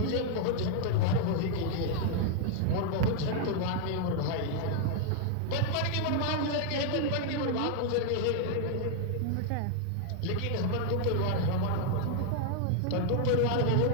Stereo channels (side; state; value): both; different; correlation 0.00